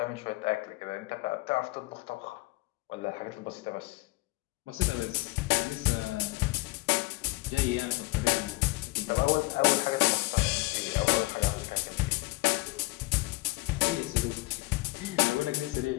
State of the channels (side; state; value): right; quieter; 23.1 dB